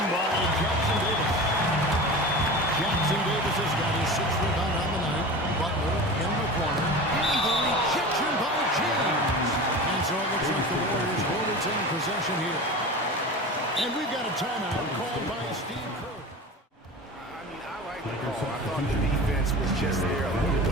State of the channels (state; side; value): normal; both; correlation 0.32